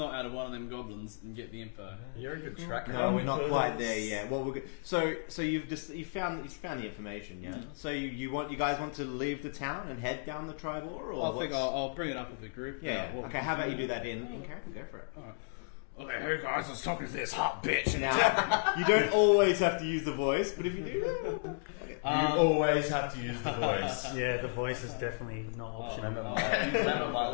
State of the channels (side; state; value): right; silent; digital silence